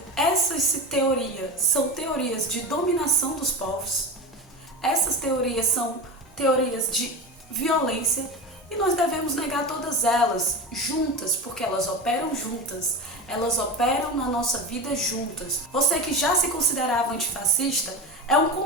Essas teorias são teorias de dominação dos povos. Essas teorias são teorias de violência e nós devemos negar todas elas juntas, porque elas operam juntas. Elas operam na nossa vida juntas. Você que já se considerava antifascista, é um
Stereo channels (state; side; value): normal; both; correlation 0.24